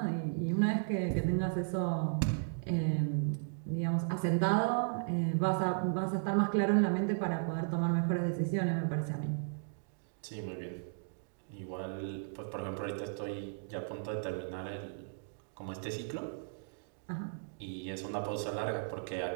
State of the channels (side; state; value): left; silent; digital silence